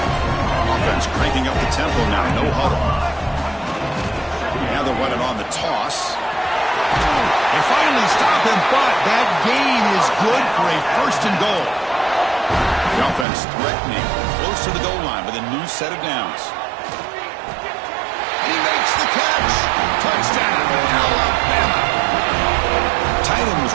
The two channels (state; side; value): drops out; left; at 13.2 s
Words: Offense cranking up the tempo now, no huddle. Now they're running on the toss. They finally stop him, but that gain is good for a 1st and goal. The offense threatening, close to the goal line with a new set of downs. He makes the catch. Touchdown, Alabama. Tight end